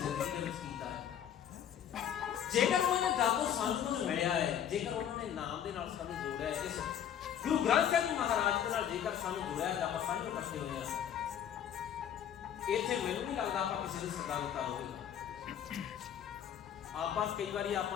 ਦੇ ਵਿੱਚ ਕੀਤਾ ਹੈ, ਜੇਕਰ ਉਹਨਾਂ ਨੇ ਦਾਤੋਂ ਸਾਨੂੰ ਕੁਝ ਮਿਲਿਆ ਹੈ, ਜੇਕਰ ਉਹਨਾਂ ਨੇ ਨਾਮ ਦੇ ਨਾਲ ਸਾਨੂੰ ਜੋੜਿਆ ਹੈ। ਇਸ ਗੁਰੂ ਗ੍ਰੰਥ ਸਾਹਿਬ ਜੀ ਮਹਾਰਾਜ ਦੇ ਨਾਲ ਜੇਕਰ ਸਾਨੂੰ ਜੋੜਿਆ ਹੈ, ਆਪਾਂ ਸਾਂਝੇ ਇਕੱਠੇ ਹੋਏ ਹਾਂ। ਇੱਥੇ ਮੈਨੂੰ ਨਹੀਂ ਲੱਗਦਾ ਆਪਾਂ ਕਿਸੇ ਨੂੰ ਸੱਦਾ ਦਿੱਤਾ ਹੋਵੇਗਾ। ਆਪਾਂ ਕਈ ਵਾਰੀ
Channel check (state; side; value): quieter; right; 9.4 dB